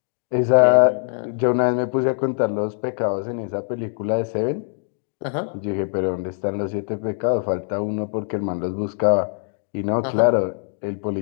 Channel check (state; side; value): silent; right; digital silence